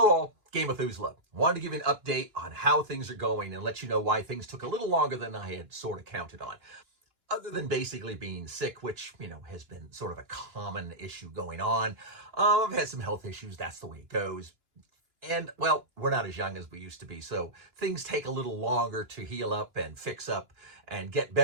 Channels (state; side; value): late; left; 2.9 ms